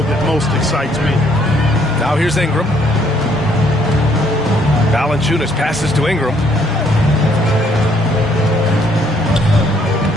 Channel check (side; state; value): both; normal; correlation 0.66